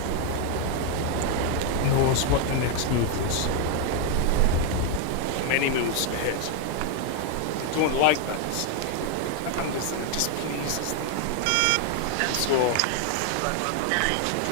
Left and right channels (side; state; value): both; different; correlation 0.00